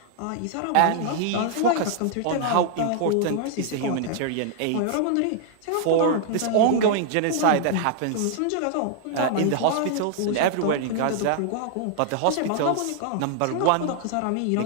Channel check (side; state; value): both; different; correlation -0.01